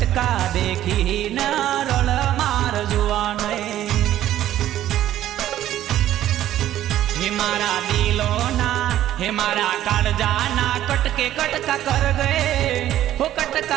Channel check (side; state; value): left; quieter; 12.6 dB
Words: देखी न रड़ मार जुआ नहीं हे मारा दिलोना हे मारा काळजाना कटके कटका कर गए हो